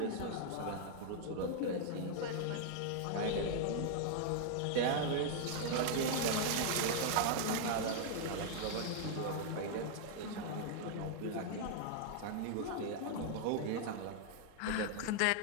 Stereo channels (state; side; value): different; both; correlation -0.01